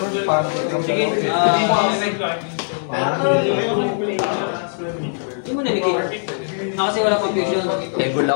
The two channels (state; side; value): silent; right; digital silence